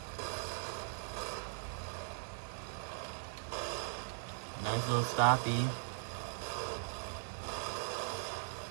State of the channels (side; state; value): left; silent; digital silence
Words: Nice little stoppy.